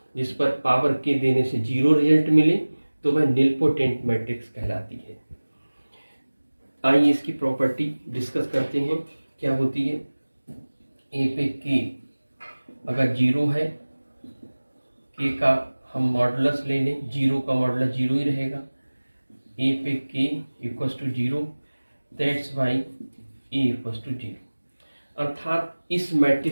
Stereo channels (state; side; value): inverted; both; correlation -1.00